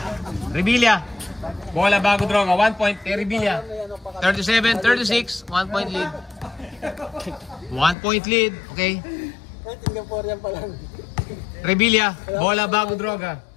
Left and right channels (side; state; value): right; drops out; at 8.0 s